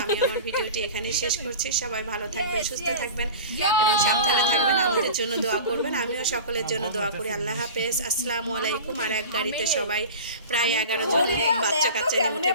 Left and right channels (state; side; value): inverted; both; correlation -0.34